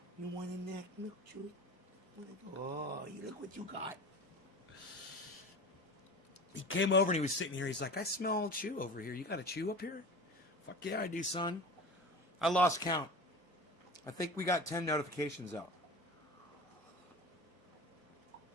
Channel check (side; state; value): both; normal; correlation 0.34